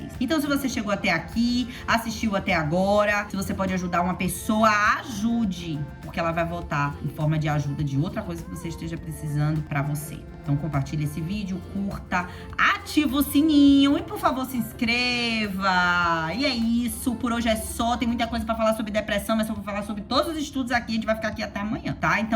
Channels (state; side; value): identical; both; correlation 1.00